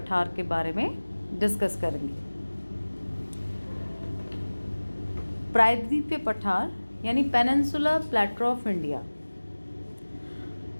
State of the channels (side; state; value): both; inverted; correlation -1.00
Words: के बारे में डिस्कस करेंगे। प्रायद्वीपीय पठार यानी पेनिनसुलर प्लेटो ऑफ इंडिया।